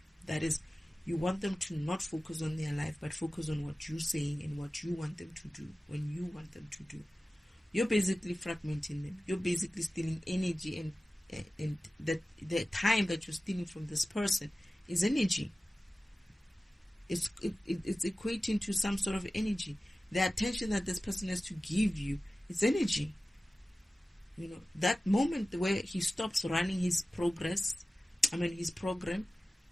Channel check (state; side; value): normal; both; correlation 0.96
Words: That is, you want them to not focus on their life, but focus on what you're saying and what you want them to do when you want them to do. You're basically fragmenting them. You're basically stealing energy, and the time that you're stealing from this person is energy. It's equating to some sort of energy. The attention that this person has to give you is energy. You know, that moment where he stops running his progress, his program,